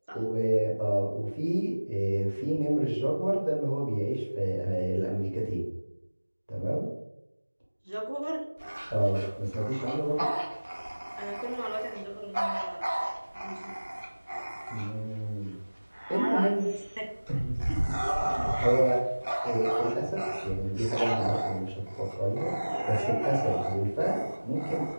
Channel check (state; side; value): inverted; both; correlation -1.00